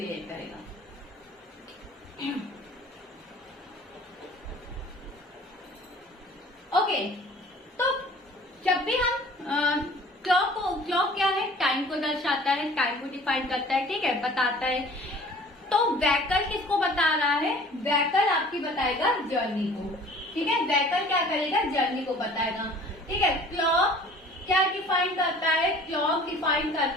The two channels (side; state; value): both; normal; correlation 0.48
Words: करेगा? ओके, तो जब भी हम क्लॉक क्या है? टाइम को दर्शाता है, टाइम को डिफाइन करता है, ठीक है, बताता है। तो वेहिकल किसको बता रहा है? वेहिकल आपकी बताएगा जर्नी को। ठीक है, वेहिकल क्या करेगा? जर्नी को बताएगा। ठीक है, क्लॉक क्या डिफाइन करता है? क्लॉक डिफाइन